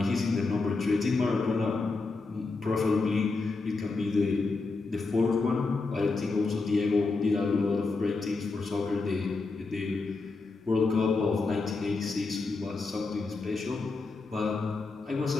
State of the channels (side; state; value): right; quieter; 3.8 dB